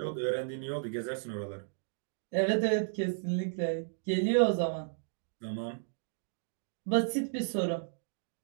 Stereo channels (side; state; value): left; silent; digital silence